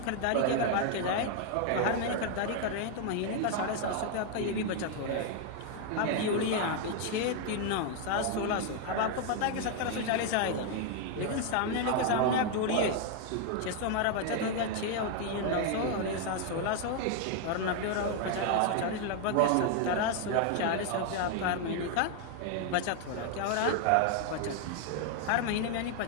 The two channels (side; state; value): both; different; correlation 0.00